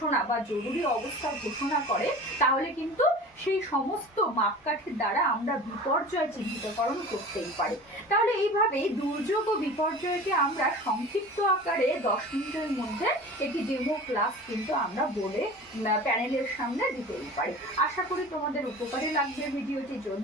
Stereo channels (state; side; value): normal; both; correlation 0.38